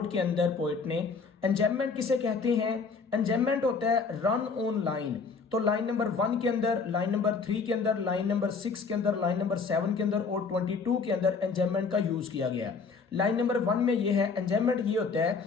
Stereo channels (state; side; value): quieter; right; 4.9 dB